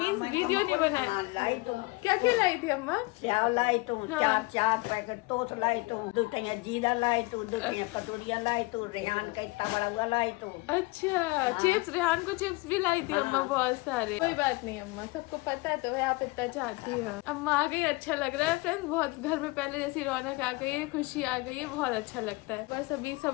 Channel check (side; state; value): right; quieter; 24.1 dB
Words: वीडियो नहीं बनाया। लाई तुम क्या क्या लाई थी अम्मा? क्या लाई तुम? 4 पैकेट टोस लाई तुम, 2 टैया जीरा लाई तू, 2 टैया कटोरिया लाई तू, रेहान का इतना बड़ा हुआ लाई तू। अच्छा, चिप्स, रेहान को चिप्स भी लाई थी अम्मा बहुत सारे। कोई बात नहीं अम्मा, सबको पता तो है आप इतना चाहती हो। अम्मा आ गई, अच्छा लग रहा है फ्रेंड्स, बहुत घर में पहले जैसी रौनक आ गई है, खुशी आ गई है, बहुत अच्छा लगता है। बस अभी